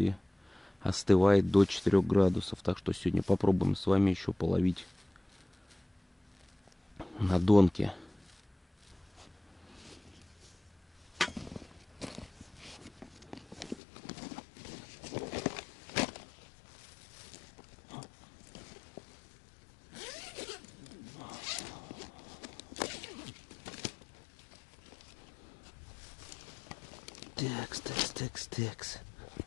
остывает до 4 градусов. Так что сегодня попробуем с вами еще половить на донке. Текс.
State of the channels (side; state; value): right; drops out; at 13.8 s